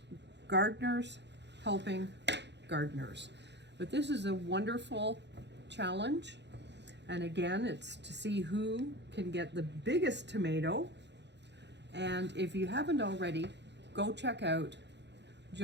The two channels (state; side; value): late; left; 0.51 ms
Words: gardeners helping gardeners. But this is a wonderful challenge, and again, it's to see who can get the biggest tomato. And if you haven't already, go check out